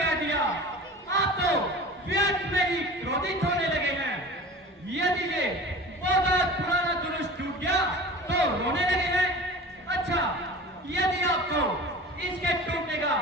दिया, आप तो व्यर्थ में ही क्रोधित होने लगे हैं। यदि ये बहुत पुराना जुलूस टूट गया तो रोने लगे हैं। अच्छा, यदि आपको इसके टूटने का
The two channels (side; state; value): both; normal; correlation 0.37